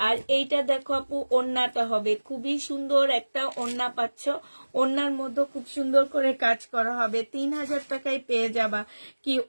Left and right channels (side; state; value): both; inverted; correlation -1.00